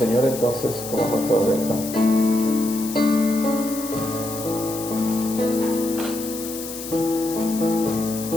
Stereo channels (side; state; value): left; noise; hiss, 10 dB below the sound